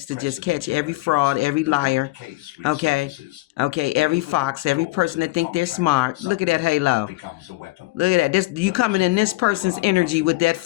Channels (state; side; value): quieter; right; 20.7 dB